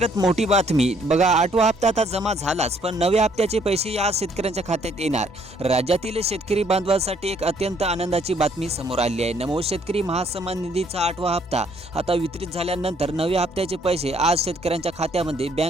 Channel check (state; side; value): normal; both; correlation 0.66